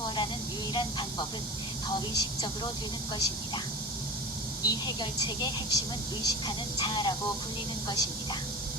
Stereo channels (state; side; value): normal; both; correlation 0.32